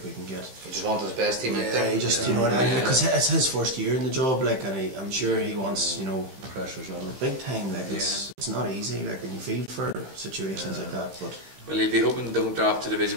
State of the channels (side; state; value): left; late; 15 ms